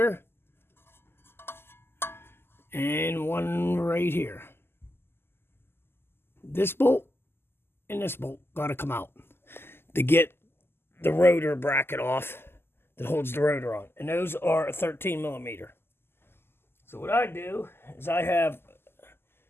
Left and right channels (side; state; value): right; late; 0.12 ms